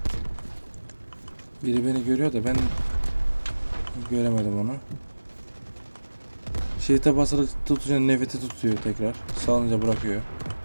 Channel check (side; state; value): both; inverted; correlation -1.00